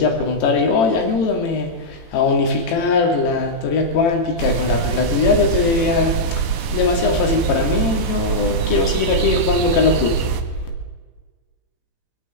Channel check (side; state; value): right; late; 18 ms